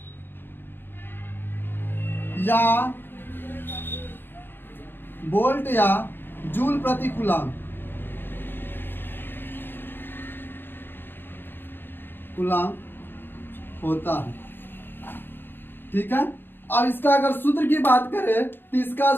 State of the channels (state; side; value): late; right; 0.10 ms